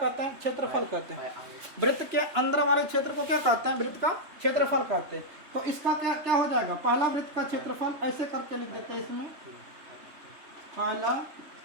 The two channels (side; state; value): left; late; 3.3 ms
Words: हैं? क्षेत्रफल कहते हैं। वृत्त के अंदर वाले क्षेत्र को क्या कहते हैं? वृत्त का क्षेत्रफल कहते हैं। तो इसका क्या हो जाएगा? पहला वृत्त का क्षेत्रफल ऐसे करके लिख देते हैं इसमें, पहला